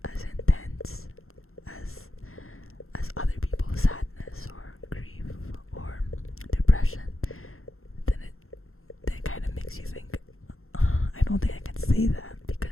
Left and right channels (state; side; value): late; right; 0.62 ms